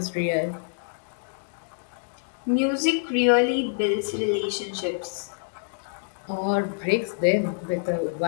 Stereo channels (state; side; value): silent; right; digital silence